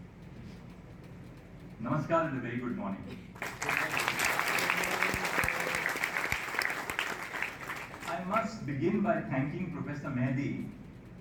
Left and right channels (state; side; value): identical; both; correlation 1.00